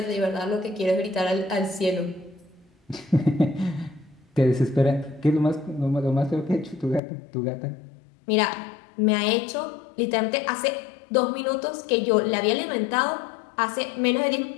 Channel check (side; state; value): right; drops out; at 7.0 s